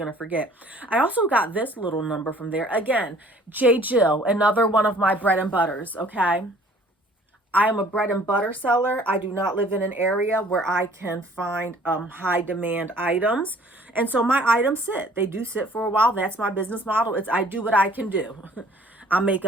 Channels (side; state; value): both; normal; correlation 0.55